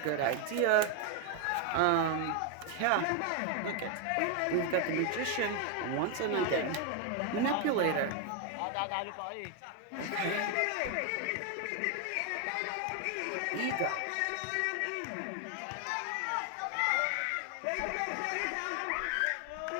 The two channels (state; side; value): different; both; correlation 0.01